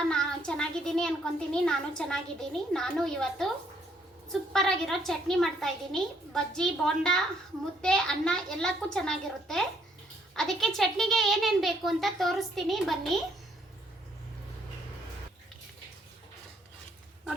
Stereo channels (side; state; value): both; normal; correlation 0.68